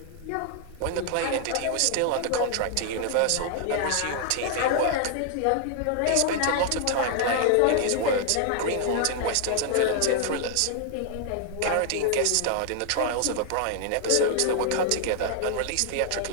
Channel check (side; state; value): both; different; correlation 0.00